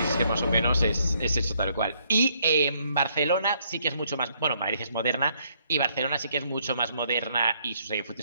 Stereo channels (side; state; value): both; inverted; correlation -0.69